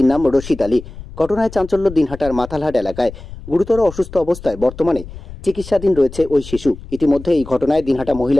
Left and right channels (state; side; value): noise; left; rumble, 14 dB below the sound